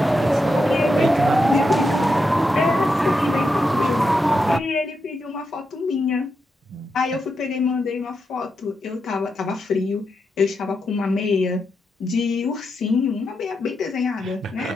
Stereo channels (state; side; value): normal; both; correlation 0.85